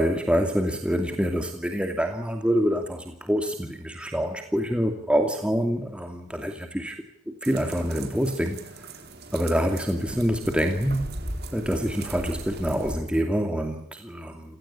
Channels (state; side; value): normal; both; correlation 0.86